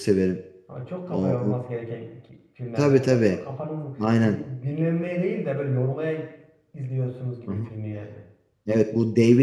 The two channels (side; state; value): both; identical; correlation 1.00